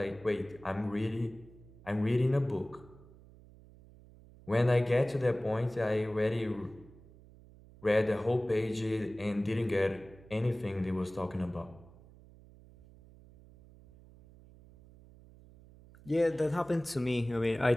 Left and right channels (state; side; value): noise; right; hum, 23 dB below the sound